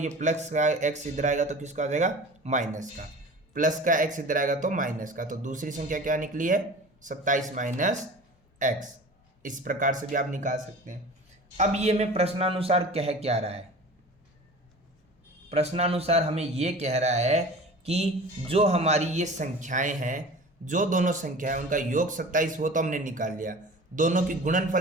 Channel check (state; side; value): normal; both; correlation 0.39